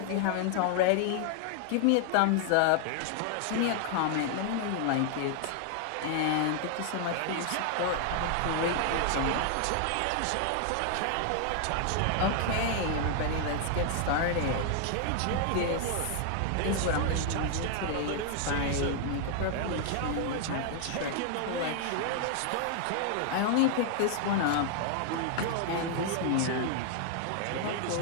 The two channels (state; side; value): different; both; correlation 0.00